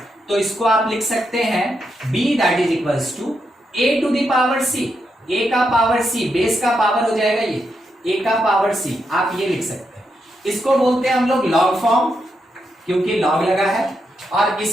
तो इसको आप लिख सकते हैं b that is equals to a to the power c, a का पावर c, बेस का पावर हो जाएगा ये a का पावर c, आप ये लिख सकते हैं। इसको बोलते हैं हम लोग लॉग फॉर्म, क्योंकि लॉग लगा है, और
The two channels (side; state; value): both; normal; correlation 0.83